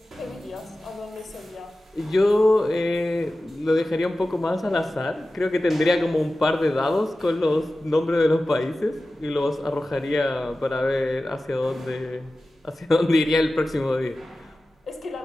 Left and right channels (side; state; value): both; normal; correlation 0.95